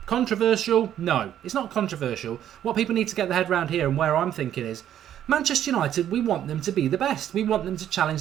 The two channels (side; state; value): left; quieter; 10.8 dB